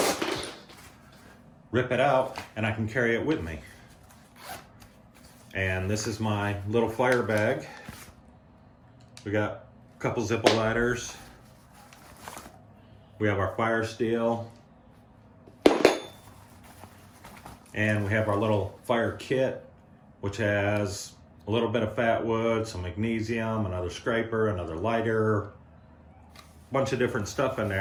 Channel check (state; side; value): identical; both; correlation 1.00